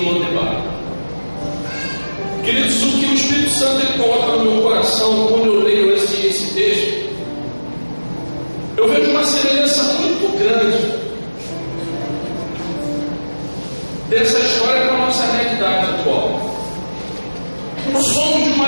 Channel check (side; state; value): both; inverted; correlation -1.00